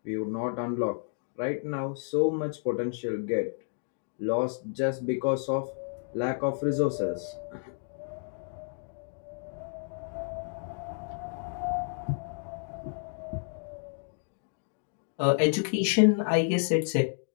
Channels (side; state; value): right; silent; digital silence